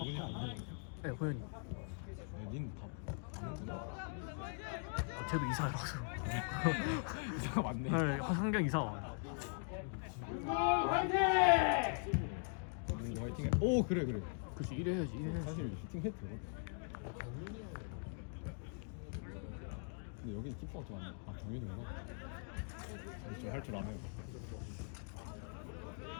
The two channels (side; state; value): right; silent; 50 dB below the other